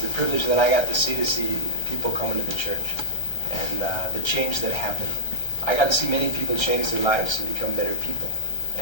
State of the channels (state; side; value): late; right; 1.3 ms